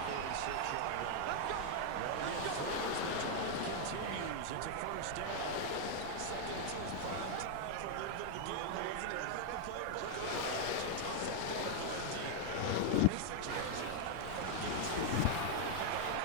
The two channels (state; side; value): different; both; correlation 0.00